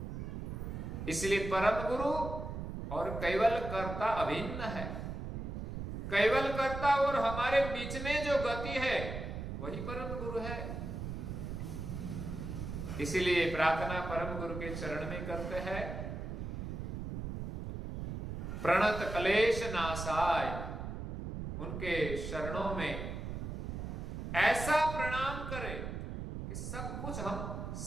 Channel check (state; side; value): noise; right; rumble, 5 dB below the sound